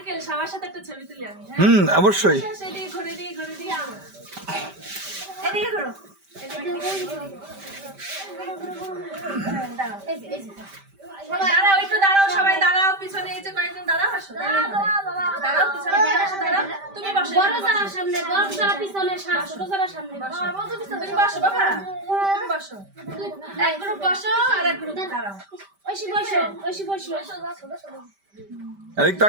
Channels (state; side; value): late; left; 5.1 ms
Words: সবার সাথে একটা ছবি তুলি আমি। অবশ্যই। এদিকে ঘুরে দিয়ে এদিকে ঘুরো। দাঁড়াও একটু দাঁড়াও, সবাই দাঁড়াও, পিছনে এই যে কয়েকজন দাঁড়াও, আসো দাঁড়াও, পিছনে আসো, দাঁড়াও, তুমি বসো, বড় যারা সামনে, বড় যারা পিছনে, ছোট যারা সামনে বসো, তুমি বসো বাবা, তুমি বসো, এক গ্রুপ বসো আর এক গ্রুপ দাঁড়াও, ঐশী বসো, এদিক